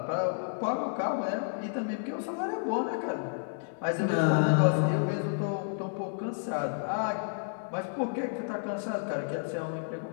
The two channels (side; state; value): right; silent; digital silence